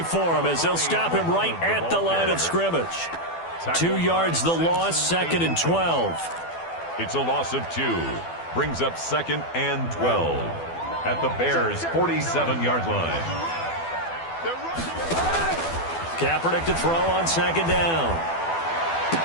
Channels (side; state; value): right; late; 12 ms